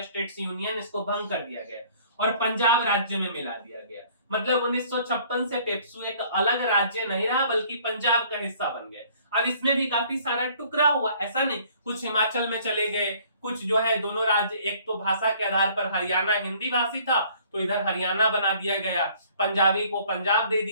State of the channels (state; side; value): inverted; both; correlation -0.57